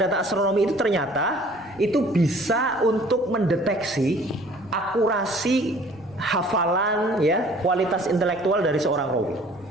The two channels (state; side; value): noise; right; rumble, 26 dB below the sound